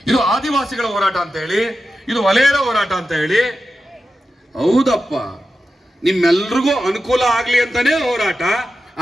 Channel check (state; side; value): normal; both; correlation 0.91